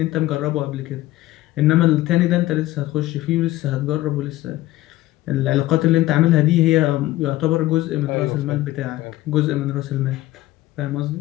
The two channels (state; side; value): quieter; right; 16.5 dB